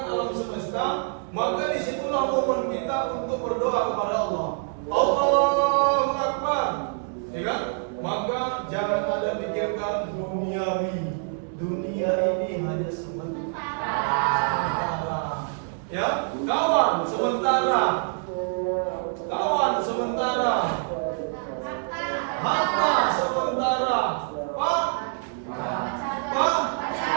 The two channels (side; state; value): left; silent; 61 dB below the other